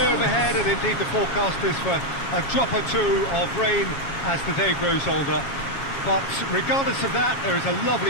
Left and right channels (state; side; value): late; right; 7.3 ms